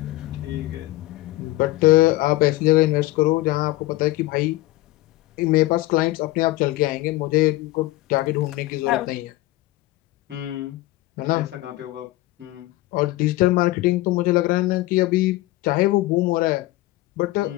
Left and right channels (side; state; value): right; quieter; 18.1 dB